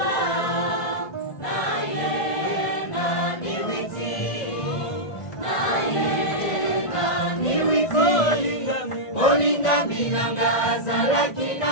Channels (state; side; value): late; right; 1.5 ms